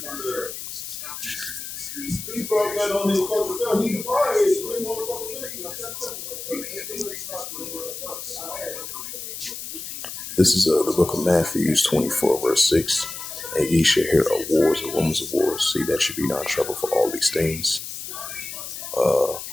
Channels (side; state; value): left; noise; hiss, 8 dB below the sound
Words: This is the book of Matthew 24, verse 6. And ye shall hear of wars and rumors of wars. See that you be not troubled for all these things.